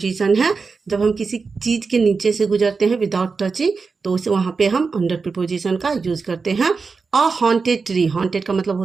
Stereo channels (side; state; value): left; quieter; 4.7 dB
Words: है। जब हम किसी चीज के नीचे से गुजरते हैं विदाउट टचिंग, तो उसे वहां पे हम अंडर प्रिपोजिशन का यूज करते हैं। अ हॉन्टेड ट्री, हॉन्टेड का मतलब